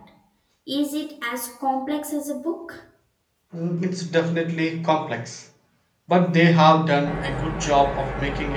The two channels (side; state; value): both; identical; correlation 1.00